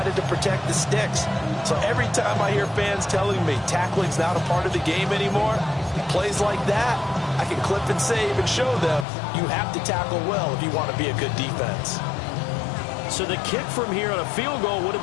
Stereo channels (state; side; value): drops out; right; at 9.1 s